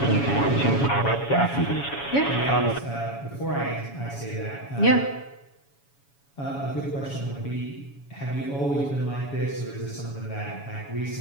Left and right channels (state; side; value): late; right; 7.1 ms